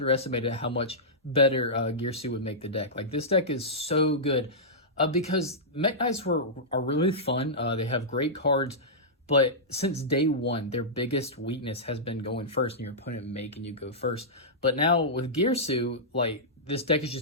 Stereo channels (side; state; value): both; normal; correlation -0.13